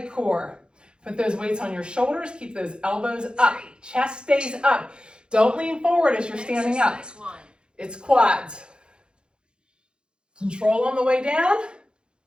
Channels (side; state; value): left; late; 0.051 ms